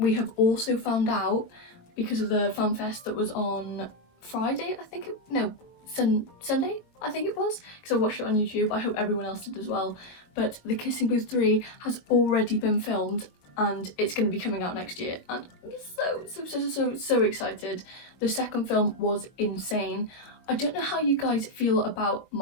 have also found out, because of the fan fest that was on Friday, Sunday I think it was, because I watched it on YouTube. I hope everyone else did as well. But the Kissing Booth 3 has already been filmed and it's going to be coming out next year, and I'm so excited. The second film was insane. I don't know how you guys feel about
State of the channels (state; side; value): late; right; 22 ms